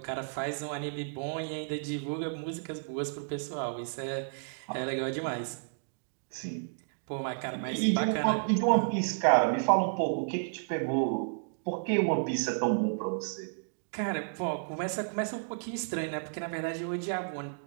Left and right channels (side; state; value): left; silent; digital silence